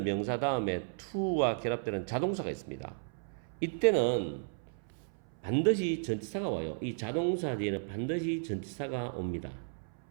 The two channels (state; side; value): silent; left; 55 dB below the other